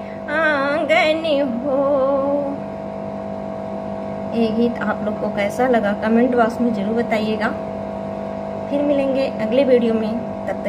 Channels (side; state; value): both; identical; correlation 1.00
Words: आंगन हो। ये गीत आप लोग को कैसा लगा कमेंट बॉक्स में जरूर बताइएगा। फिर मिलेंगे अगले वीडियो में, तब